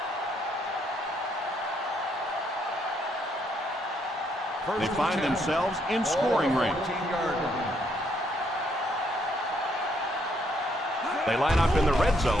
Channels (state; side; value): normal; both; correlation 0.72